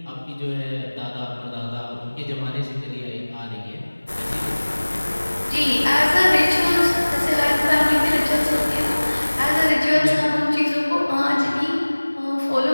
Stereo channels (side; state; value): both; inverted; correlation -1.00